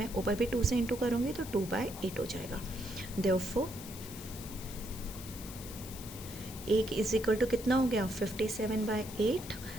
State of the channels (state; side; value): noise; left; hiss, 13 dB below the sound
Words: ऊपर भी 2 से इंटू करूँगी तो 2/8 हो जाएगा। देयरफॉर 1 इज इक्वल टू कितना हो गया, 57/8